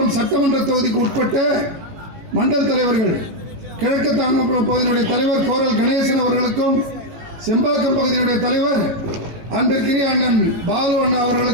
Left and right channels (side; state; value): left; late; 18 ms